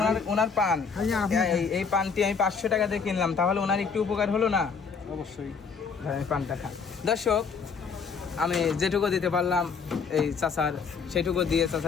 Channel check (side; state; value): right; quieter; 5.6 dB